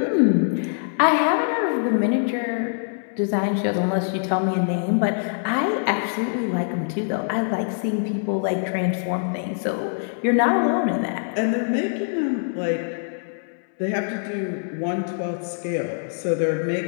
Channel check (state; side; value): silent; right; 63 dB below the other